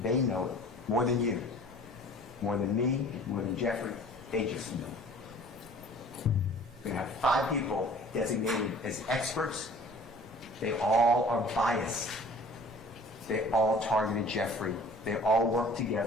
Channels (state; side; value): normal; both; correlation 0.48